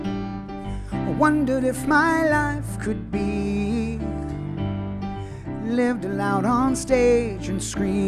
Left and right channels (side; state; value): both; identical; correlation 1.00